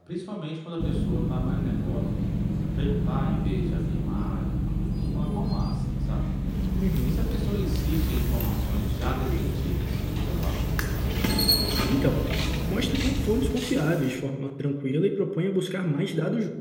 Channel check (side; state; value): both; identical; correlation 1.00